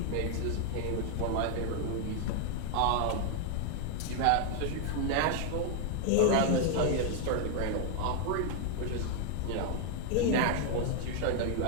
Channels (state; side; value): different; both; correlation 0.01